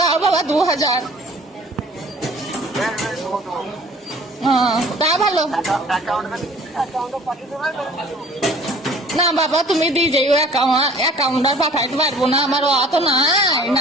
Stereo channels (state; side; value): normal; both; correlation 0.50